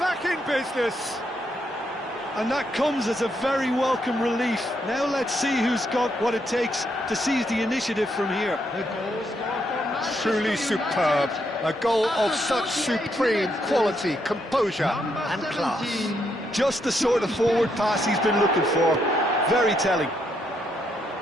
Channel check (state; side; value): normal; both; correlation 0.77